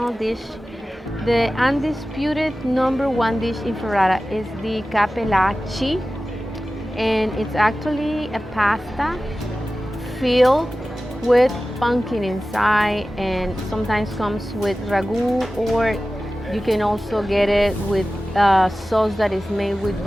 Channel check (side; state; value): both; normal; correlation 0.95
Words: dish. The undisputed #1 dish in Ferrara is the cappellacci, and it's actually a pasta filled with pumpkin inside, and sometimes comes with ragu, or you can also get it with sauce that is made with